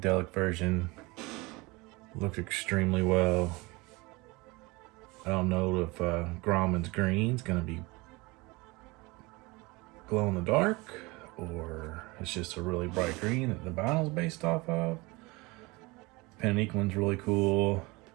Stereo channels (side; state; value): left; quieter; 24.3 dB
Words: version looks extremely well. I don't know if Groman's green is going to be glow in the dark, or it's just a really bright green that the vinyl's based off of. Panique one's really cool.